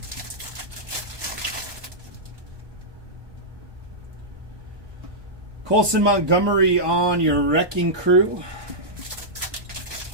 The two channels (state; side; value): late; left; 1.2 ms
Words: Colson Montgomery on your Wrecking Crew.